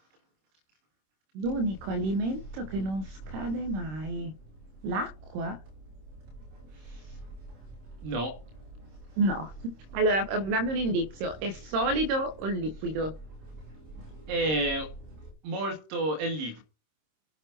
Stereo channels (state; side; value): late; left; 26 ms